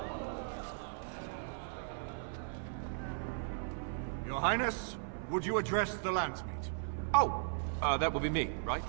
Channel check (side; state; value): left; silent; 53 dB below the other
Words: Your Highness, would you address the Landsmeet? Oh, that would be me, right?